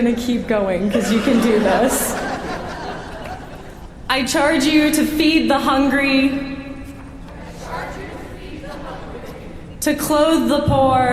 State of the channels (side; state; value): both; identical; correlation 1.00